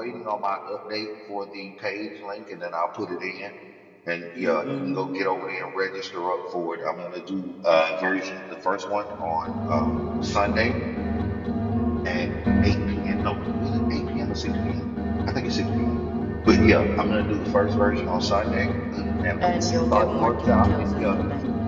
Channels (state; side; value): identical; both; correlation 1.00